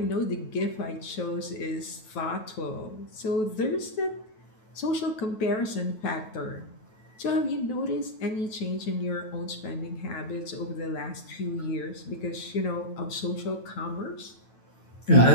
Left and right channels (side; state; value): right; late; 9.2 ms